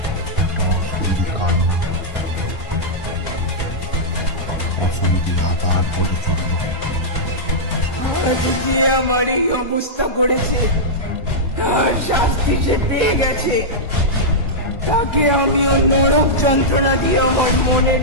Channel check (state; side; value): normal; both; correlation -0.10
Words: একটা অশরীরী কান্না, অশরীরী আতার পরে চলল। আজ যে আমার এই অবস্থা করেছে, তার শাস্তি সে পেয়ে গেছে। তাকে আমিও নরক যন্ত্রণা দিয়ে আমার মনের